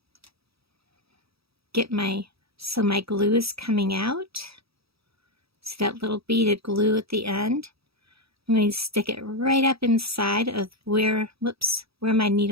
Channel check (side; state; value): left; late; 0.77 ms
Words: Get so my glue is coming out. See that little bead of glue at the end? I'm going to stick it right up inside of where my